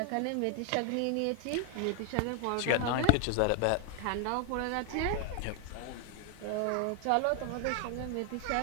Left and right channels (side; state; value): both; different; correlation 0.00